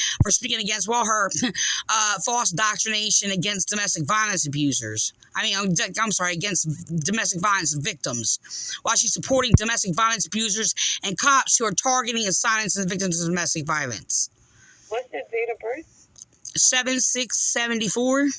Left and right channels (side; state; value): both; identical; correlation 1.00